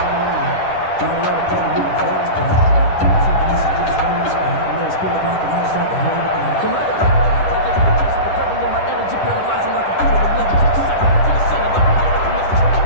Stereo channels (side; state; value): right; late; 10 ms